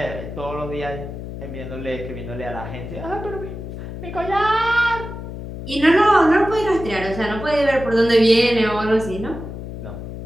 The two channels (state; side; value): noise; left; hum, 9 dB below the sound